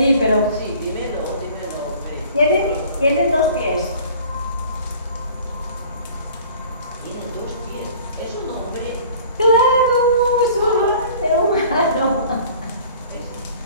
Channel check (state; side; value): inverted; both; correlation -0.48